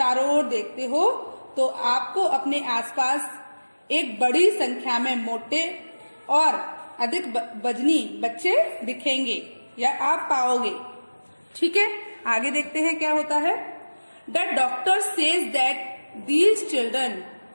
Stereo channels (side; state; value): both; inverted; correlation -1.00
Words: ओर देखते हो तो आपको अपने आसपास एक बड़ी संख्या में मोटे और अधिक वजनी बच्चे दिखेंगे या आप पाओगे। ठीक है, आगे देखते हैं क्या होता है। The doctor says that these children